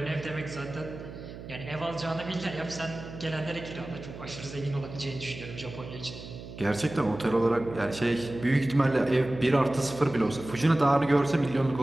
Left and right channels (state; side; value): noise; right; hum, 13 dB below the sound